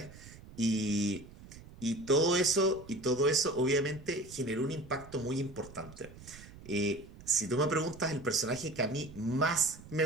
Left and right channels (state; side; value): noise; right; rumble, 18 dB below the sound